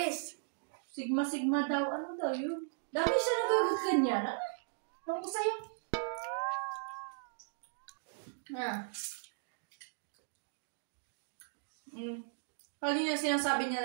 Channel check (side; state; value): left; silent; digital silence